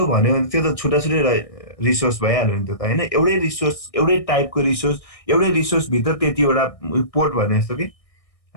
भन्यो भने त्यो त छुट्टा छुट्टै रिसोर्स भइहाल्यो नि त हैन। एउटै रिसोर्स, एउटै टाइपको रिसोर्स, एउटै रिसोर्स भित्र त्यतिवटा पोर्ट भने जस्तो कि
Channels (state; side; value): late; right; 1.6 ms